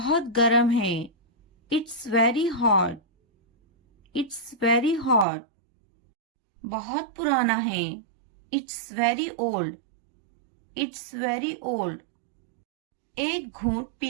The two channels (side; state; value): left; drops out; at 5.2 s